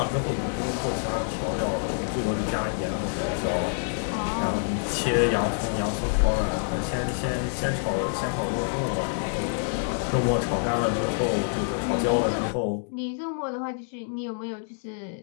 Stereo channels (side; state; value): right; silent; digital silence